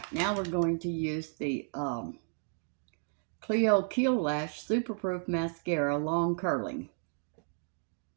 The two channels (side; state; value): left; silent; 56 dB below the other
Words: now we're going to use the Clio Keel Lash Superproof Mascara Long Curling.